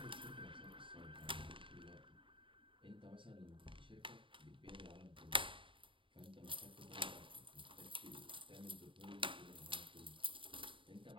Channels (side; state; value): left; late; 0.25 ms